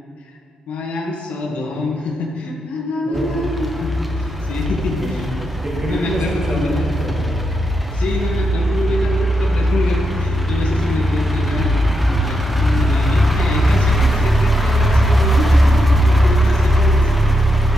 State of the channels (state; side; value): normal; both; correlation 0.84